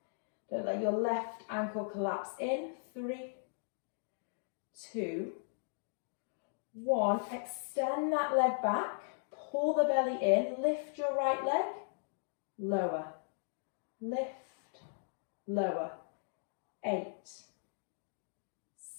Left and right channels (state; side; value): silent; right; digital silence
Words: Don't let your left ankle collapse in. 3, 2, 1. Extend that leg back. Pull the belly in. Lift your right leg. Lower. Lift. Lower. 8,